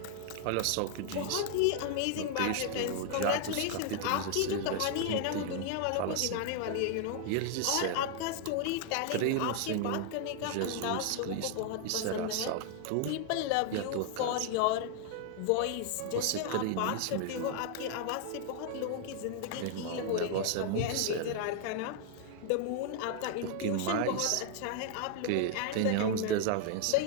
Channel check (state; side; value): different; both; correlation 0.00